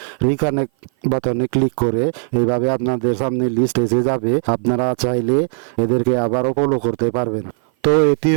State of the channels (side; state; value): left; silent; 56 dB below the other